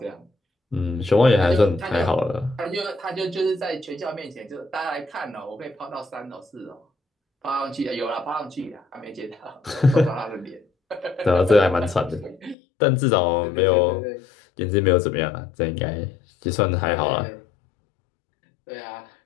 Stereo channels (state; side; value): drops out; right; at 12.6 s